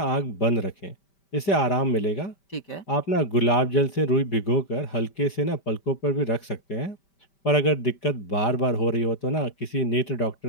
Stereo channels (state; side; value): late; right; 5.1 ms